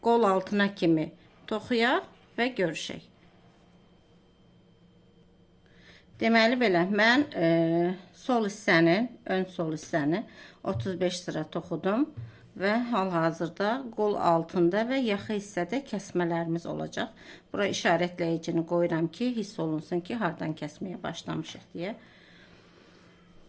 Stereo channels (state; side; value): identical; both; correlation 1.00